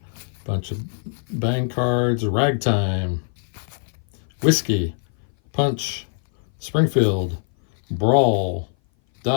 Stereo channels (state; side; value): silent; right; 58 dB below the other